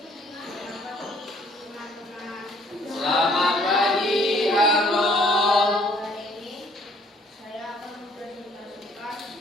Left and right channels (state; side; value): normal; both; correlation 0.61